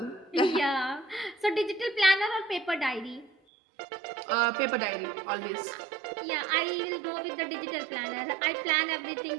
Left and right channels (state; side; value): drops out; left; at 3.3 s